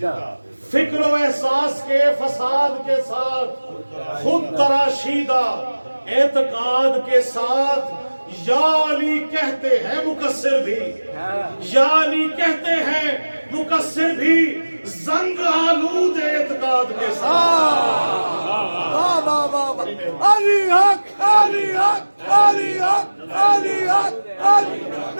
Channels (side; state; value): both; inverted; correlation -1.00